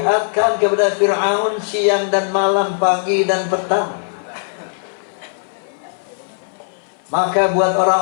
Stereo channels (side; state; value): right; silent; 57 dB below the other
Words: kepada Fir'aun siang dan malam, pagi dan petang. Maka buat